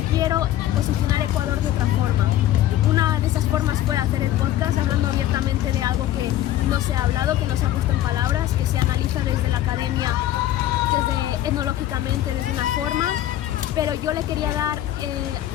quiero posicionar Ecuador de otra forma. Una de esas formas fue hacer el podcast hablando abiertamente de algo que no se ha hablado, que no se ha puesto en palabras, que se analiza desde la academia, desde etnológicamente, desde una forma, pero yo le quería dar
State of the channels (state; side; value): quieter; right; 13.1 dB